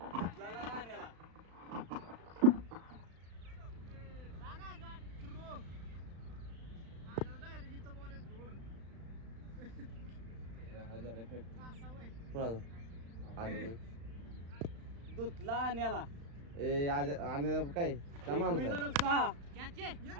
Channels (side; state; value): left; late; 35 ms